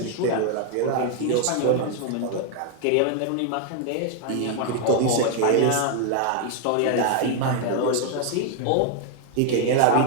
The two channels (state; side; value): different; both; correlation 0.00